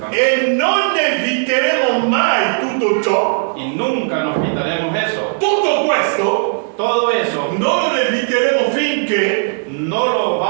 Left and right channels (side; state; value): left; silent; digital silence